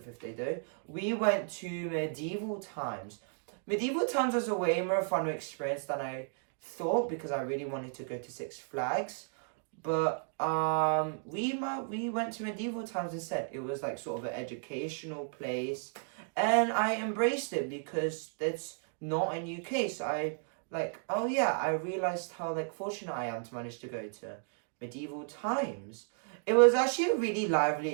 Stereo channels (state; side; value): silent; left; 55 dB below the other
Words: the fifth day though, we went to medieval times. Medieval times was a way more fun experience than I thought, because I really wanted to go to Six Flags. But we went to medieval times instead. It was like sort of an educational place, and I embraced it because that's not in UK. So I like, oh yeah, I realized how like fortunate I am to manage to go to medieval times. It was actually a really lively